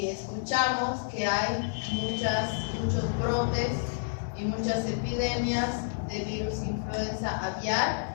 escuchamos que hay muchos brotes y muchas epidemias de virus influenza aviar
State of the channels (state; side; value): silent; right; 58 dB below the other